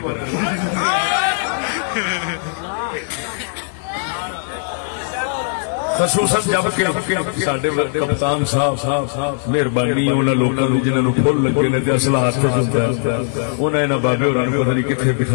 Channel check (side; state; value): right; silent; digital silence